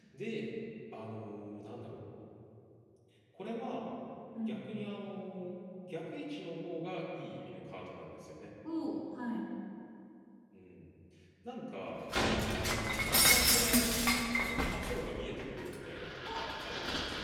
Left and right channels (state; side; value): identical; both; correlation 1.00